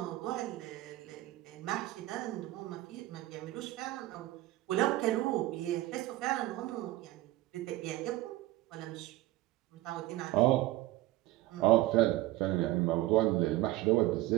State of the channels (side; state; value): left; quieter; 17.1 dB